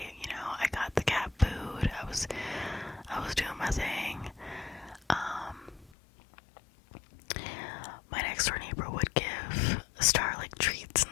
You know, I got the cat food. I was doing my thing. My next door neighbor would give Star like treats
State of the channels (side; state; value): right; drops out; at 5.9 s